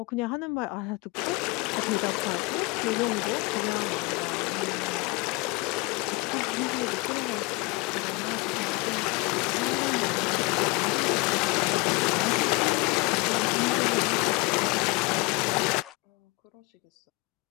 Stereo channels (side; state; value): right; quieter; 24.7 dB